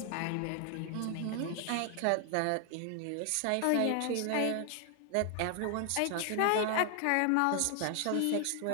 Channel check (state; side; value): different; both; correlation 0.00